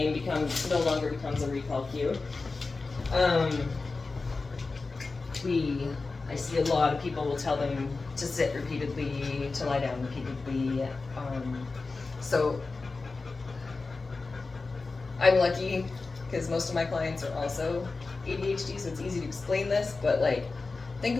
no longer becomes a recall cue. I see a lot of people will tell them to sit repeatedly, to lie down repeatedly. So I'm lucky because most of my clients are also ADHD, so it's easy to explain this, but like, think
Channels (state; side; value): quieter; right; 3.9 dB